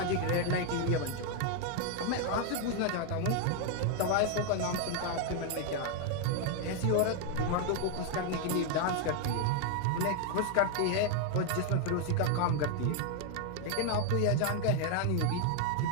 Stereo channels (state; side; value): different; both; correlation 0.00